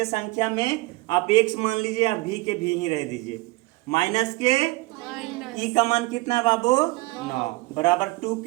संख्या में आप X मान लीजिए या V के V ही रह दीजिए। माइनस के E का मान कितना है बाबू, 9 बराबर 2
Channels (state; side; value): quieter; left; 22.1 dB